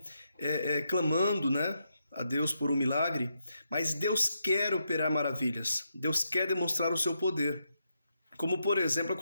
clamando, né, a Deus por um milagre, mas Deus quer operar maravilhas, Deus quer demonstrar o seu poder, como por exemplo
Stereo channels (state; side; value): inverted; both; correlation -0.82